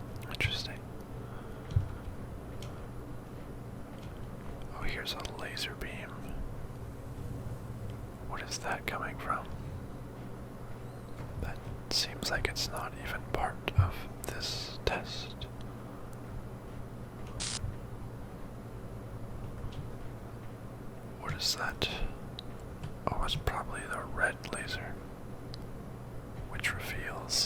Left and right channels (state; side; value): identical; both; correlation 1.00